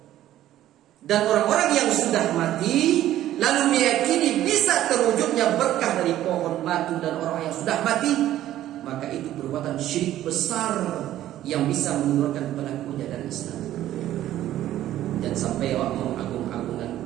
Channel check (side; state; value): left; quieter; 13.1 dB